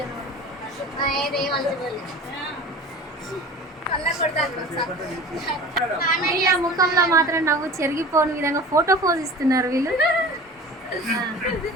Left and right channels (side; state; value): both; normal; correlation 0.38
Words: వీళ్ళ ముఖంలో మాత్రం నవ్వు చెరిగిపోని విధంగా ఫోటో పోజ్ ఇస్తున్నారు వీళ్ళు.